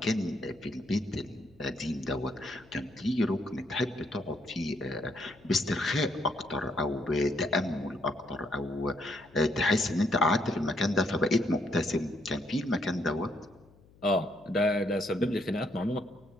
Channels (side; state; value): left; noise; hum, 27 dB below the sound